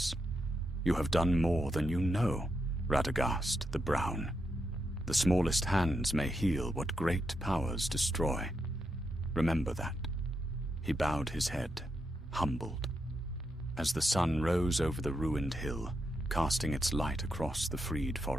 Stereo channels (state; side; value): normal; both; correlation 0.83